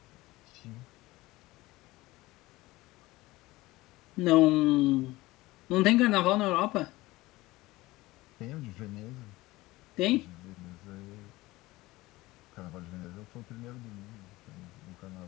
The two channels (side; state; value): right; quieter; 19.4 dB